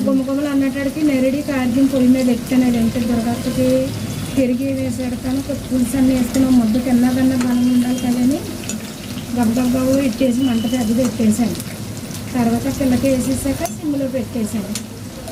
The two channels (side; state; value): both; identical; correlation 1.00